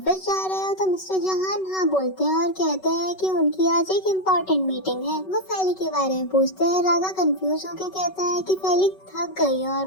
जा रहे हो? तो मिस्टर जोहान हाँ बोलते हैं और कहते हैं कि उनकी आज एक इम्पोर्टेंट मीटिंग है। वो फैली के बारे में पूछते हैं। रागा कंफ्यूज होकर कहता है कि फैली थक गई है और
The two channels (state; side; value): late; right; 5.3 ms